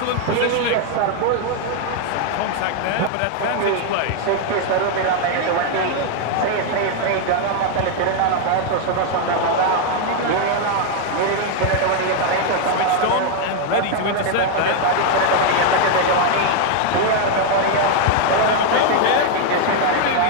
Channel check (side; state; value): both; different; correlation 0.00